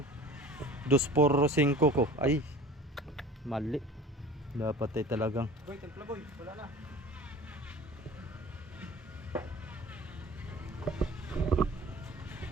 245 ko. Ay, mali. Dapat ay talagang. Boy, templa boy. Wala na.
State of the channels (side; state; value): both; normal; correlation 0.43